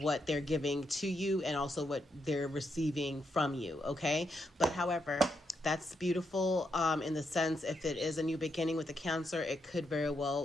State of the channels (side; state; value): both; normal; correlation 0.81